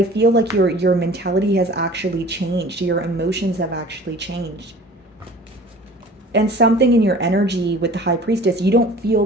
feel like your mentality has actually changed. Your emotions have actually changed. And something in your energy with the high priestess, you don't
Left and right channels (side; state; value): both; normal; correlation 0.46